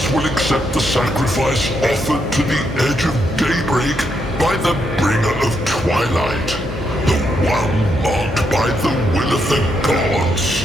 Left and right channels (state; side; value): normal; both; correlation 0.78